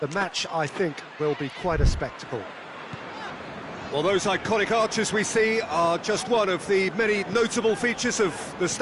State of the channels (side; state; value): both; identical; correlation 1.00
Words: The match, I think, will be quite a spectacle. Well, those iconic arches we see are just one of the many notable features of the